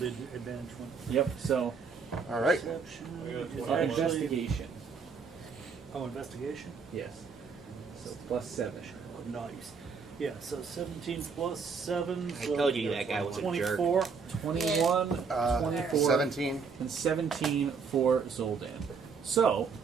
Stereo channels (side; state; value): left; quieter; 5.4 dB